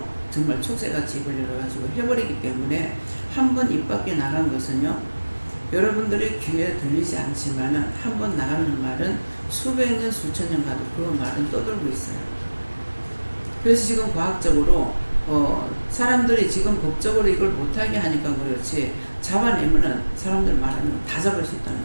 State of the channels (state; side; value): inverted; both; correlation -1.00